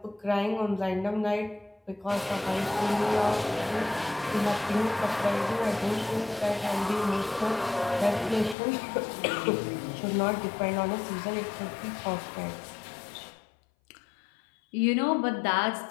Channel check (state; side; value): drops out; right; at 8.6 s